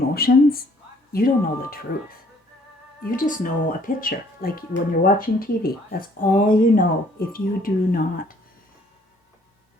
you don't know the truth. You just know a picture, like when you're watching TV. That's all you know if you do not.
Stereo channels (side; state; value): both; normal; correlation 0.60